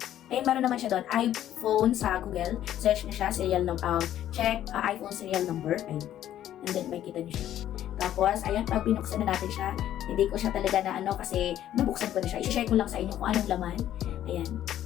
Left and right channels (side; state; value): right; quieter; 11.8 dB